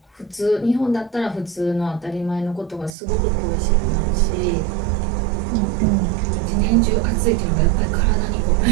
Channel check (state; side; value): drops out; left; at 2.9 s